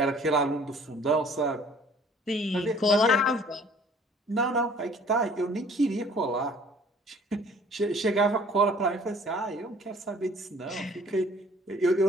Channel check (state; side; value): normal; both; correlation 0.53